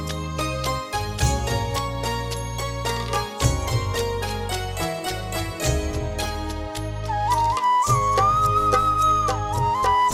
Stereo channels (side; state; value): both; identical; correlation 1.00